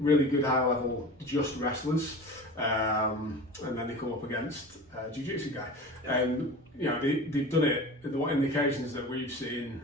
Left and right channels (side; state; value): both; normal; correlation 0.35